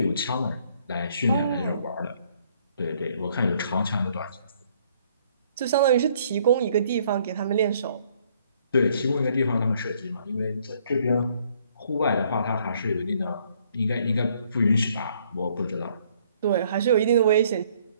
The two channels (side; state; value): both; inverted; correlation -0.65